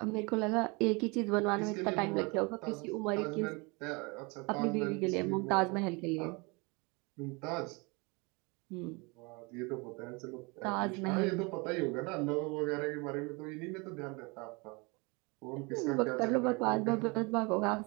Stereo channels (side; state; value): left; quieter; 28.3 dB